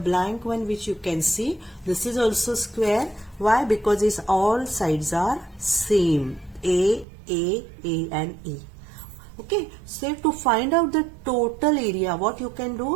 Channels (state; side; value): drops out; left; at 7.1 s